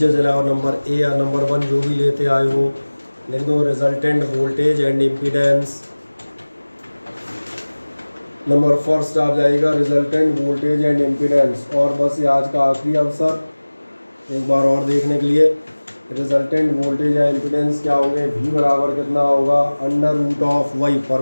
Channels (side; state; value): both; inverted; correlation -1.00